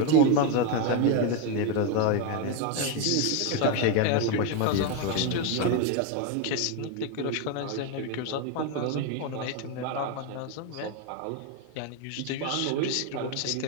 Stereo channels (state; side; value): different; both; correlation 0.02